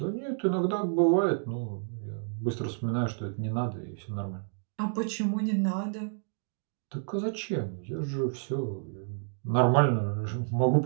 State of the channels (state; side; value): silent; left; digital silence